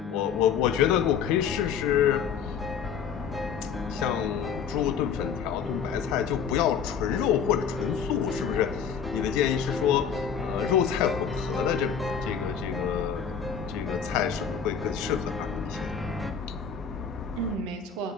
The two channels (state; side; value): quieter; right; 7.2 dB